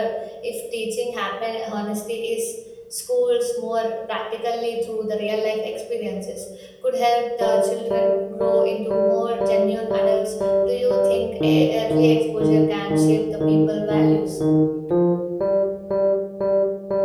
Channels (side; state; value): both; identical; correlation 1.00